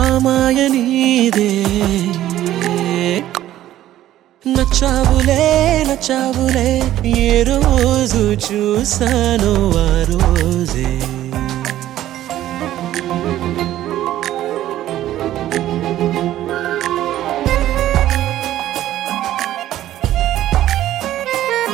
మాయ నీదే నచ్చావులే నచ్చావులే ఏ రోజు చూశానో ఆ రోజే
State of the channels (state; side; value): quieter; left; 13.3 dB